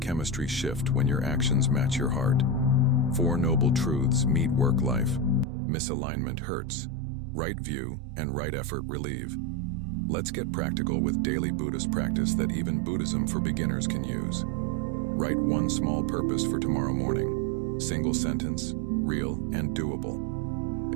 shift when your actions match your heart. 4 noble truths meet work life. Misalignment hurts. Right view and right effort relieve. Let's get practical with daily Buddhist practice that even Buddhism for beginners can use. Write one small purpose for tomorrow morning. Single sentence, real and doable.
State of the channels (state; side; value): drops out; left; at 5.5 s